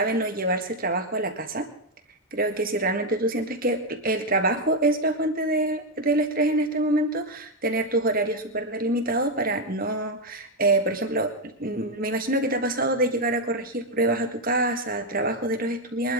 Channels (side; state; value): both; normal; correlation 0.04